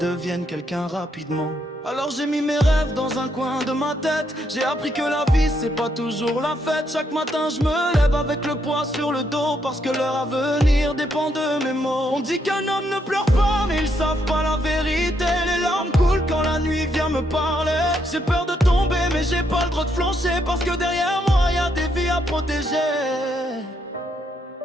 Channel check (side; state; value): both; normal; correlation 0.76